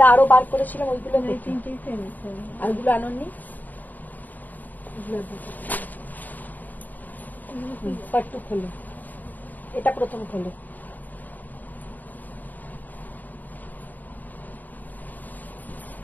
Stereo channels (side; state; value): right; late; 0.084 ms